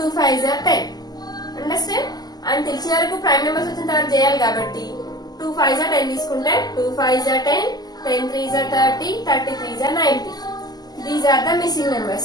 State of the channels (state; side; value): late; right; 0.20 ms